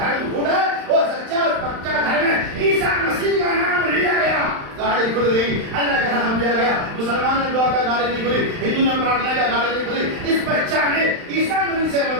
گڈ ہے، وہ سچا اور پکا دھرم ہے، عیسیٰ مسیح کا نام لیا گیا، گاڑی کھل گئی، اللہ کا نام لیا گیا، مسلمان نے دعا کا گاڑی نہیں کھلی، ہندو نے پرارتھنا کا گاڑی نہیں کھلی، اس بچہ نے عیسیٰ مسیح سے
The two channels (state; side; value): late; left; 35 ms